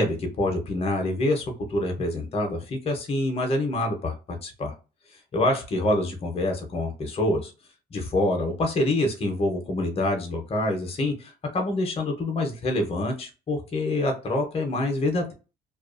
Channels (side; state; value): both; normal; correlation 0.60